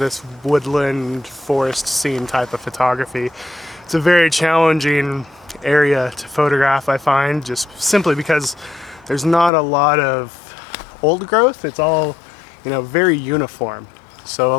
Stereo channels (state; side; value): drops out; right; at 9.5 s